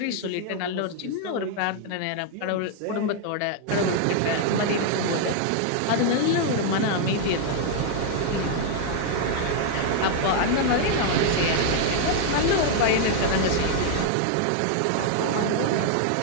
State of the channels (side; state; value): both; different; correlation 0.00